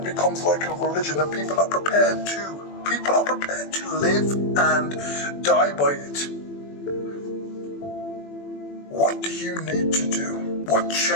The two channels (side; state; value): right; late; 21 ms